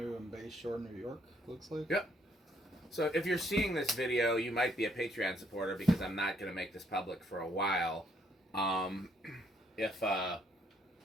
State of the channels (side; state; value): both; normal; correlation 0.69